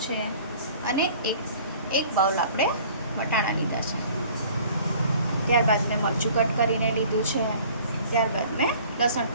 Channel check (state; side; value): inverted; both; correlation -0.50